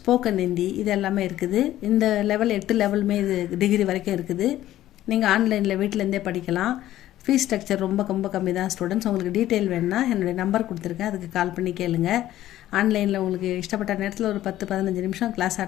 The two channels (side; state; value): right; quieter; 13.7 dB